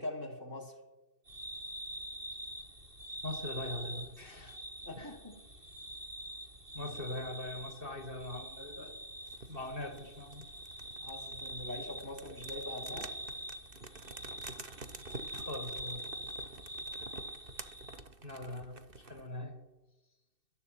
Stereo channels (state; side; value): late; left; 2.6 ms